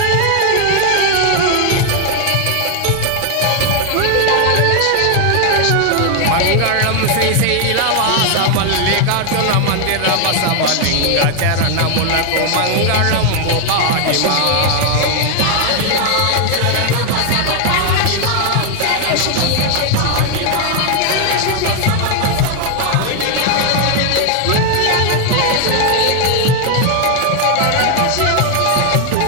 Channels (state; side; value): different; both; correlation 0.00